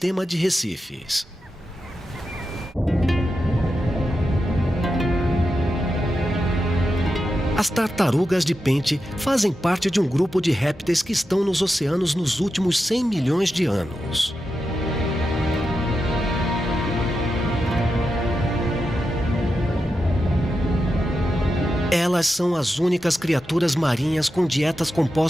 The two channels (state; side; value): normal; both; correlation 0.89